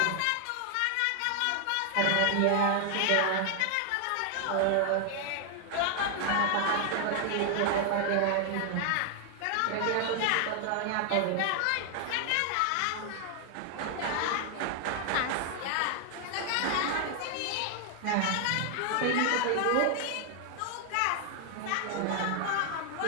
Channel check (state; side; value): different; both; correlation 0.00